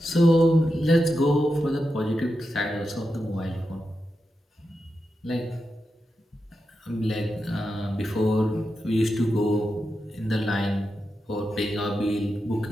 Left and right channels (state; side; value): normal; both; correlation 0.89